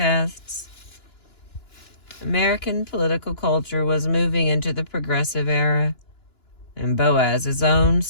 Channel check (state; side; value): late; right; 2.9 ms